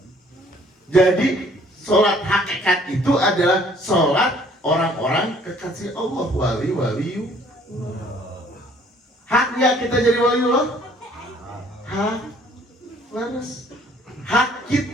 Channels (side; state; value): both; normal; correlation 0.58